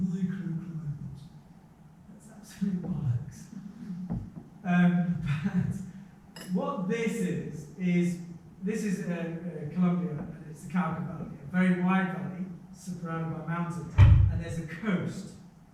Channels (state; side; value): identical; both; correlation 1.00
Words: that's absolute bollocks. But what this is Colombia, and it's the Cauca Valley, a very wide valley surrounded by mountains, and there's a coast